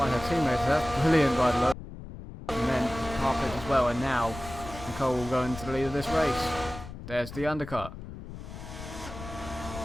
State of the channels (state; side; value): noise; left; rumble, 12 dB below the sound